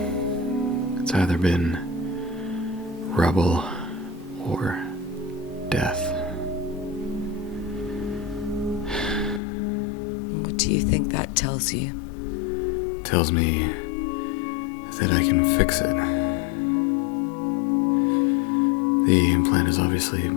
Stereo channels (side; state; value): right; drops out; at 9.4 s